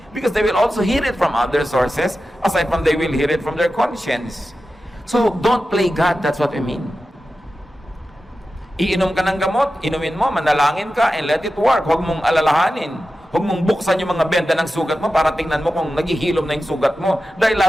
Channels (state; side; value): normal; both; correlation 0.93